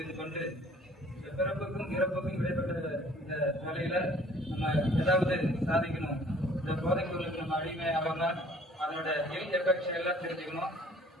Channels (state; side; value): normal; both; correlation 0.55